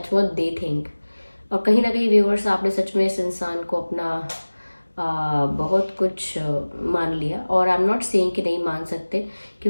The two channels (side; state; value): both; inverted; correlation -1.00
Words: what they think. और कहीं ना कहीं व्यूअर्स, आपने सच में इस इंसान को अपना बहुत कुछ मान लिया, और आई एम नॉट सेइंग कि नहीं मान सकते,